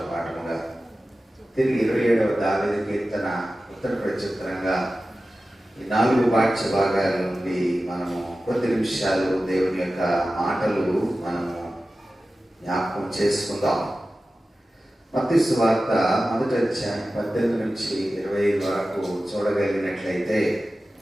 పాఠముగా, తిరిగి 27వ దావీదు కీర్తన ఉత్తర ప్రత్యుత్తరంగా, ఈ 4 పాఠ్య భాగాల నుండి మనము కొద్ది నిమిషాలు దేవుని యొక్క మాటలు మనము జ్ఞాపకం చేసుకుందాం. మత్తయి సువార్త 1వ అధ్యాయం 18 నుంచి 25 వరకు చూడగలిగినట్లయితే,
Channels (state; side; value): normal; both; correlation 0.95